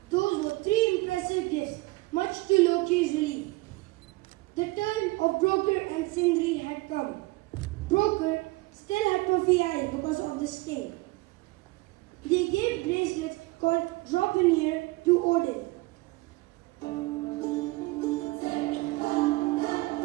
Those were three impressive gifts, much to Loki's relief. The turn of Broker and Sindri had come. Broker still had puffy eyes because of the sting. They gave bracelets called Dropinir to Odin.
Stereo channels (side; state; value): left; quieter; 22.0 dB